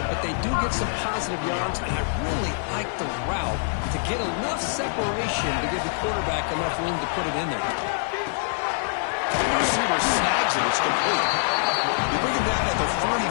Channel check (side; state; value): right; silent; 57 dB below the other